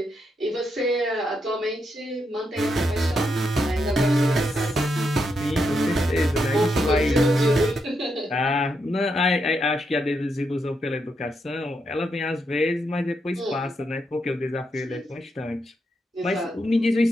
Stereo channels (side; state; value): both; normal; correlation 0.81